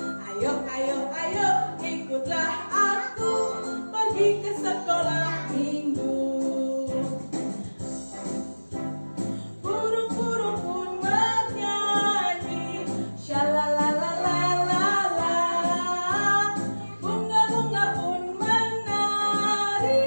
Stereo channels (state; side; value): inverted; both; correlation -1.00